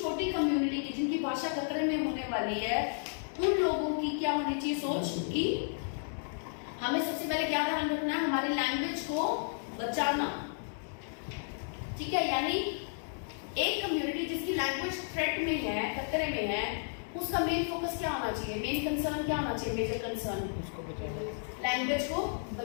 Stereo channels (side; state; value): right; silent; digital silence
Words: कम्युनिटी की जिनकी भाषा खतरे में होने वाली है, उन लोगों की क्या होनी चाहिए सोच कि हमें सबसे पहले क्या ध्यान रखना है, हमारी लैंग्वेज को बचाना, ठीक है। यानी एक कम्युनिटी जिसकी लैंग्वेज थ्रेट में है, खतरे में है, उसका मेन फोकस क्या होना चाहिए, मेन कंसर्न क्या होना चाहिए, मेजर कंसर्न उसको बचाना, लैंग्वेज को